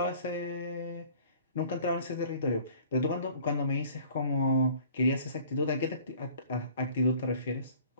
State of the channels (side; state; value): both; inverted; correlation -0.51